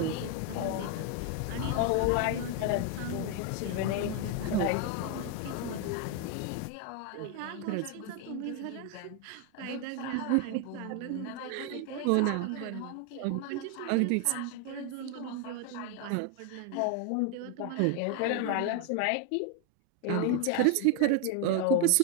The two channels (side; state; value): both; different; correlation 0.01